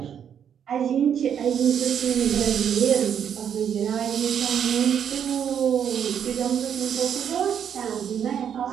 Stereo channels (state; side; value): quieter; left; 8.5 dB